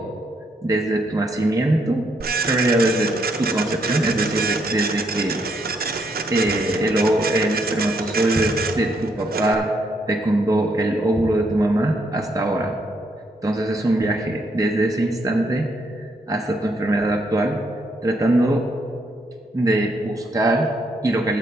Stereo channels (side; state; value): both; normal; correlation 0.74